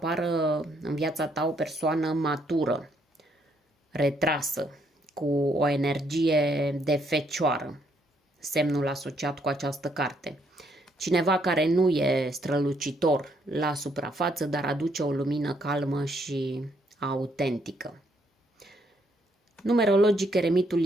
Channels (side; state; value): both; normal; correlation 0.71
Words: în viața ta o persoană matură, retrasă, cu o energie de fecioară, semnul asociat cu această carte. Cineva care nu e strălucitor la suprafață, dar aduce o lumină calmă și autentică. Numerologic, eremitul